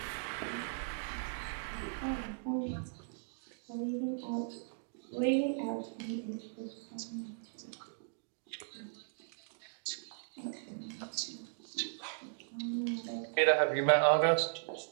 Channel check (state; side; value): silent; left; digital silence